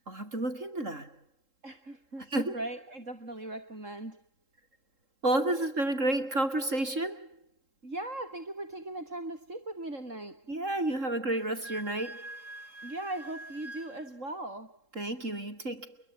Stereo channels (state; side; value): late; left; 3.7 ms